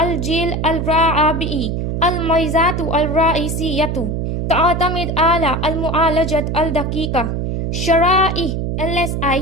الرابع. الميزات الرئيسية تعتمد على المعالجة الدقيقة، شرائح LSI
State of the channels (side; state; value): right; noise; hum, 1 dB below the sound